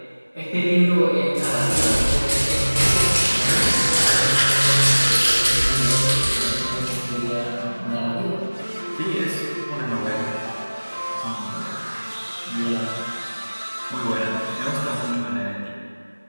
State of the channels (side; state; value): both; inverted; correlation -1.00